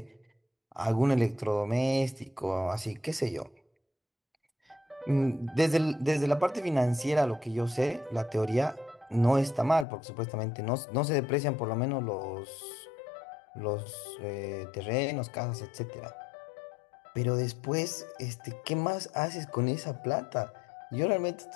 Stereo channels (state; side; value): drops out; right; at 9.9 s